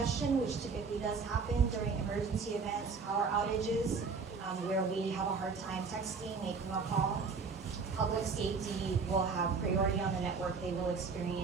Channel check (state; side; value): quieter; left; 4.9 dB